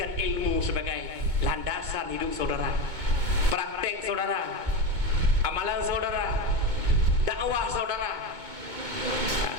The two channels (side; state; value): left; late; 2.2 ms